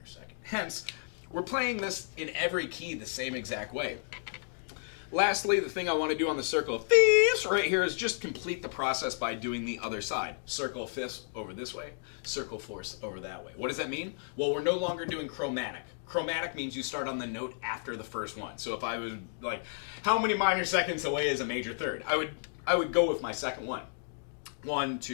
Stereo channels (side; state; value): right; silent; digital silence